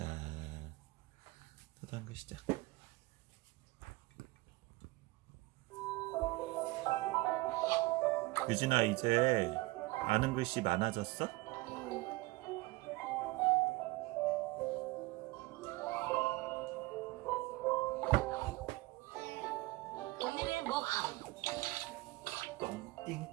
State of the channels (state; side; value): quieter; left; 21.4 dB